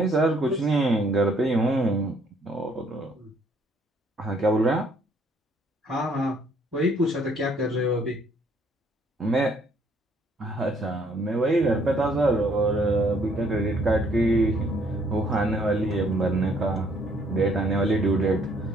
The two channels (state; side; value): normal; both; correlation 0.65